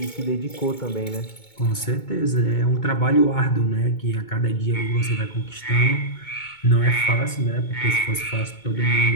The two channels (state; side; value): late; right; 2.2 ms